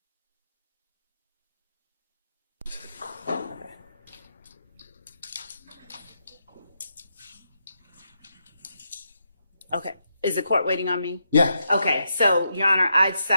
Okay. Is the court waiting on me? Yeah. Okay. So, Your Honor, I'd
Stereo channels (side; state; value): both; inverted; correlation -0.83